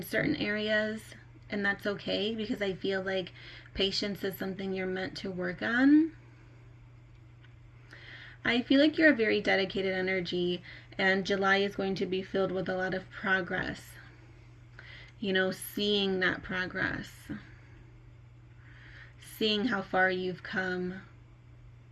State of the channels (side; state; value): both; identical; correlation 1.00